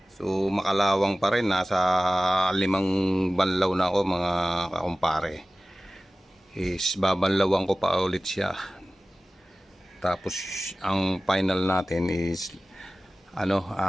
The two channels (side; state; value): both; normal; correlation 0.97